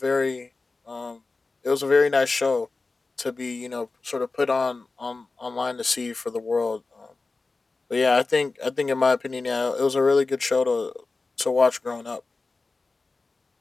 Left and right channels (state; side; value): quieter; right; 3.7 dB